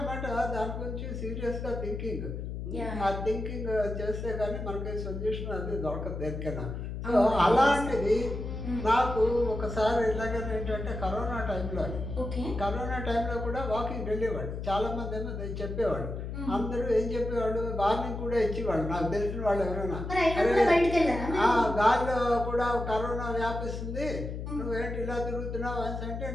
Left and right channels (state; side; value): noise; left; hum, 6 dB below the sound